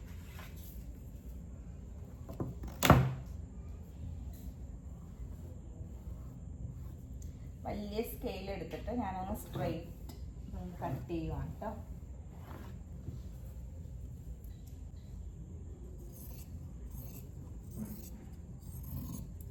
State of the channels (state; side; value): identical; both; correlation 1.00